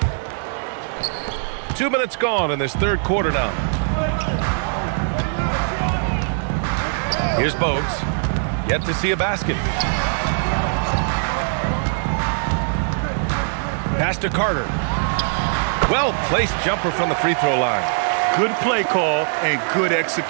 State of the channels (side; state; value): left; silent; 62 dB below the other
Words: Two minutes gone in this third quarter now. Here's Bogues. Yet to see a basket. Pass to Carter. Well-placed jumper from the free throw line. Good play call and good